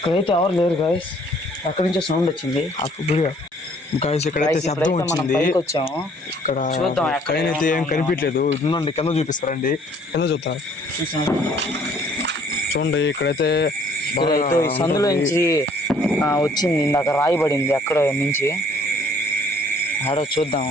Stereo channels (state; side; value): normal; both; correlation 0.59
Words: ఎవరు లేరు గాయస్. అక్కడి నుంచే సౌండ్ వచ్చింది. గాయస్, ఇక్కడైతే శబ్దం వచ్చింది. ఇక్కడ అయితే ఏం కనిపించలేదు. ఉందండి, కింద చూపిస్తారండి. కింద చూస్తారు చూడండి. ఇక్కడైతే సందులో నుంచి వచ్చింది. ఇందాక రాయబడింది అక్కడ నుంచి. ఆడో చూద్దాం.